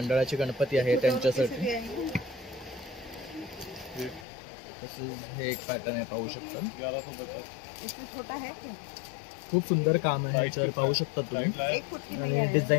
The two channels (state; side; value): drops out; right; at 4.2 s